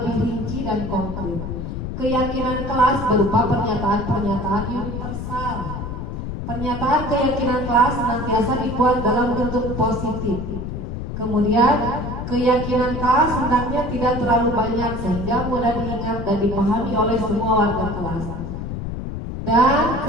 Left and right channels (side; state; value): left; noise; rumble, 6 dB below the sound